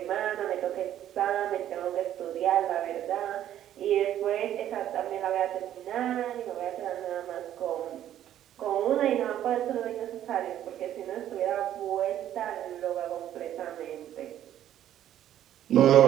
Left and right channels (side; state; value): left; quieter; 11.5 dB